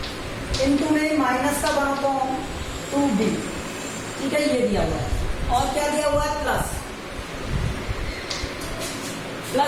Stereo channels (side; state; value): both; identical; correlation 1.00